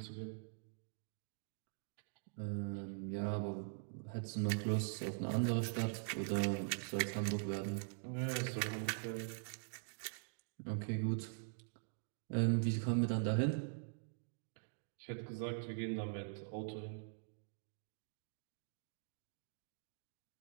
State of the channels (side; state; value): left; silent; digital silence